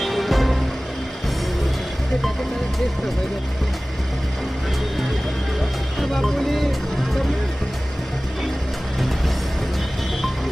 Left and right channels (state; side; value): normal; both; correlation 0.98